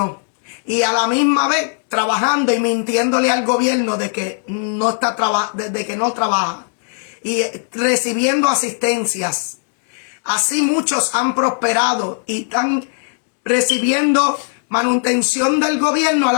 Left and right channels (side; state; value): right; silent; 58 dB below the other